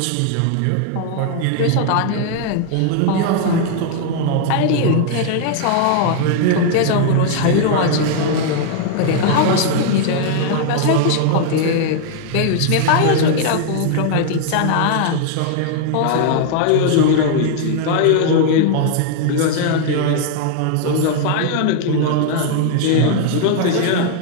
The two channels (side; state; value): both; different; correlation 0.00